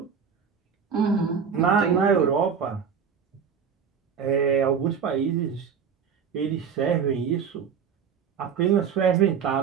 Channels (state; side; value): quieter; left; 6.9 dB